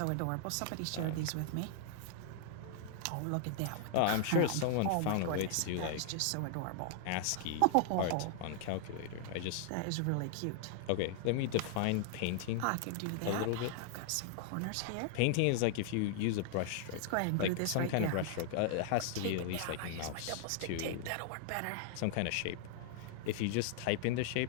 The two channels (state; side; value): different; both; correlation 0.00